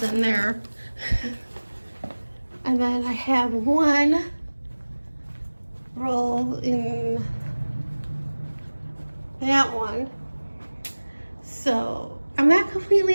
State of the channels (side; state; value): both; inverted; correlation -1.00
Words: in there. And then I have 1 roll in that one. So I'm not